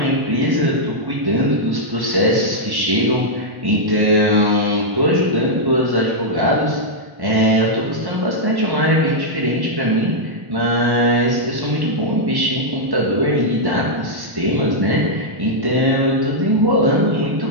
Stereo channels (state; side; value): late; left; 1.1 ms